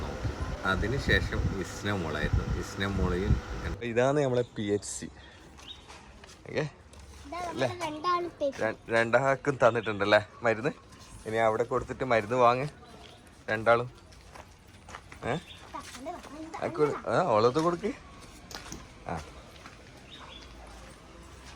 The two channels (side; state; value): both; identical; correlation 1.00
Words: നോക്കി. അതിനുശേഷം ഇസ്ന മോളായിരുന്നു. ഇസ്ന മോളയും ഇതാണ് നമ്മളെ PHC. ഓക്കെ അല്ലേ? രണ്ടാൾക്കും തന്നിട്ടുണ്ടല്ലേ മരുന്ന്. ഇനി അവിടെ കൊടുത്തിട്ട് മരുന്ന് വാങ്ങ് രണ്ടാളും. ഓളത്ത് കൊടുക്ക്. ആ,